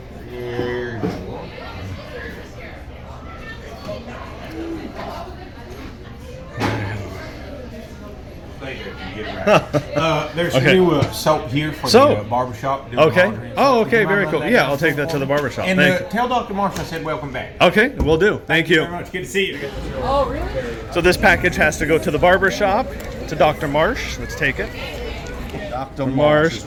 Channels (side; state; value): both; identical; correlation 1.00